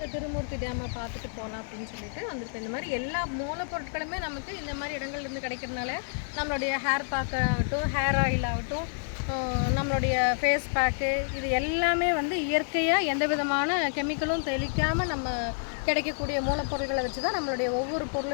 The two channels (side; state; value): right; silent; 59 dB below the other